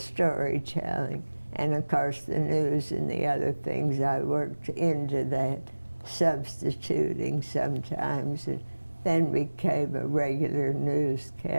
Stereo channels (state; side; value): inverted; both; correlation -1.00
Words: and of course the news and the other things I worked into that, substituting sometimes, and then became a regular